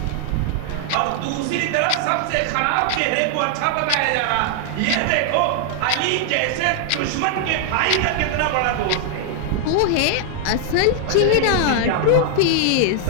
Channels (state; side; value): different; both; correlation 0.00